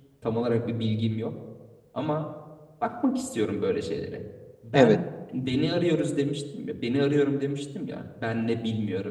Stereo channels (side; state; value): both; identical; correlation 1.00